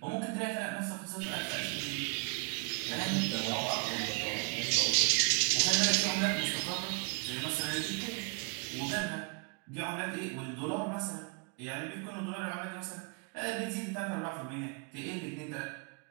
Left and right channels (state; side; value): quieter; left; 34.5 dB